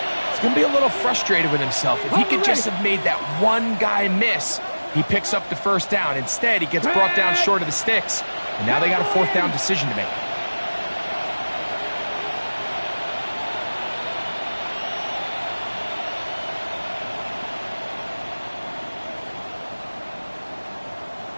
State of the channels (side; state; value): both; inverted; correlation -1.00